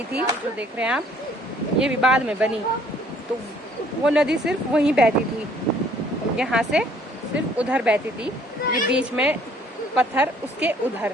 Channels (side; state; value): both; normal; correlation 0.60